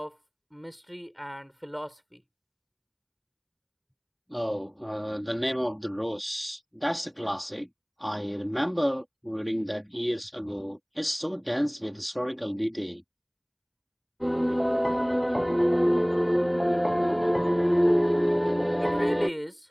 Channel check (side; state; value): both; identical; correlation 1.00